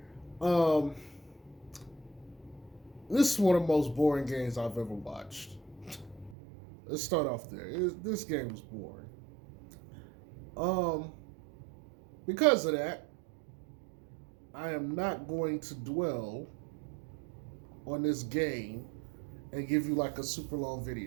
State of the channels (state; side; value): drops out; left; at 6.4 s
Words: Um, this is one of the most boring games I've ever watched. Let's start off there. This game was boring. Um, because of that, I am not going to dwell on this game and give you like a super long